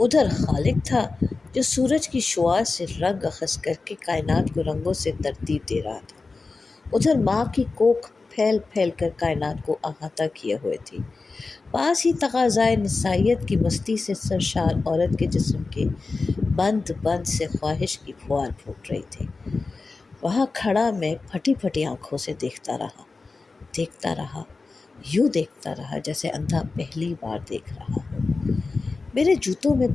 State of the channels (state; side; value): quieter; right; 3.9 dB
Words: उधर खालिक था جو سورج کی شعاع سے رنگ اخذ کر کے کائنات کو رنگوں سے ترتیب دے رہا تھا۔ ادھر ماں کی کوکھ پھیل پھیل کر کائنات کو احاطہ کیے ہوئے تھی۔ پاس ہی تقاضائے نسائیت کی مستی سے سرشار عورت کے جسم کے بند بند سے خواہش کی پھوار پھوٹ رہی تھی۔ وہاں کھڑا میں پھٹی پھٹی آنکھوں سے دیکھتا رہا، یوں دیکھتا رہا جیسے اندھا پہلی بار دیکھ رہا ہو۔ میرے جوتوں میں